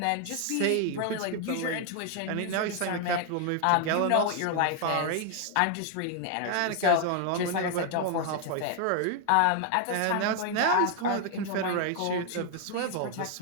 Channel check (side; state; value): both; different; correlation 0.00